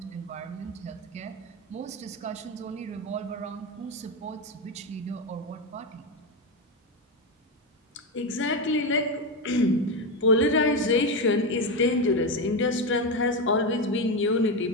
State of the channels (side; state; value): both; normal; correlation 0.12